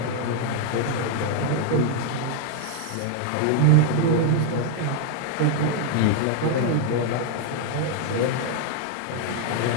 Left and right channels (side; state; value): both; different; correlation 0.00